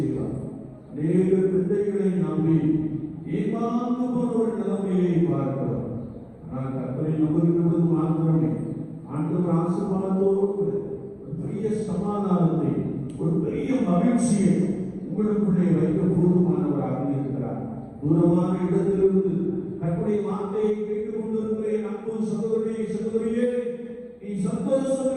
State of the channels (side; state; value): both; identical; correlation 1.00